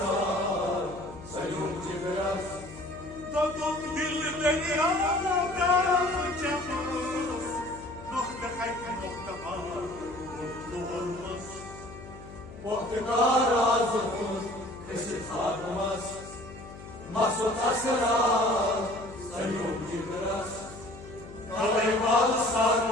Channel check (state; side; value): noise; left; hum, 15 dB below the sound